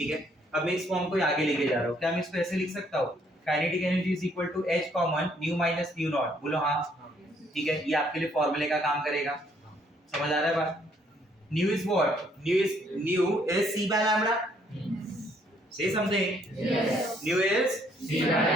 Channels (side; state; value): both; normal; correlation 0.67